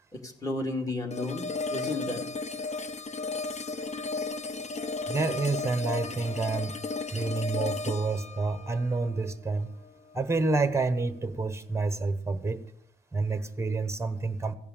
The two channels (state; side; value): normal; both; correlation 0.70